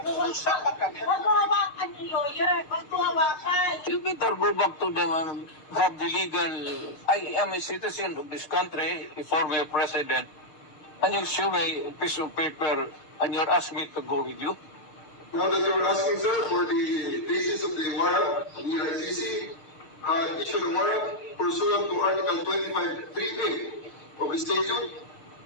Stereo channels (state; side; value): late; right; 6.6 ms